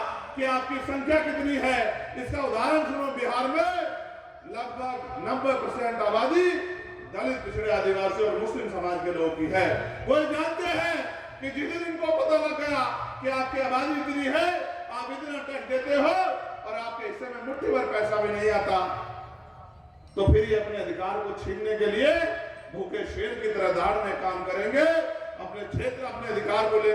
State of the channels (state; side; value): identical; both; correlation 1.00